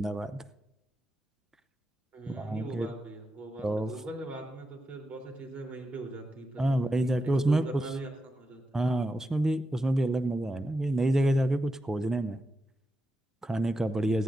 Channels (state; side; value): normal; both; correlation 0.88